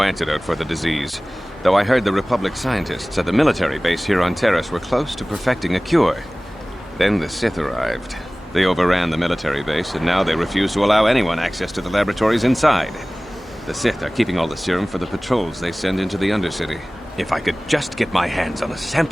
antidote for the disease, though I heard the Republic scientists at the military base here on Terrace were close to perfecting a cure. Then the Sith arrived. They overran the military base, and now they refuse to allow anyone access to the laboratories inside. The Sith are keeping all the serum for the patrols they send into the Undercity. If I could just get my hands on a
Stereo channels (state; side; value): normal; both; correlation 0.98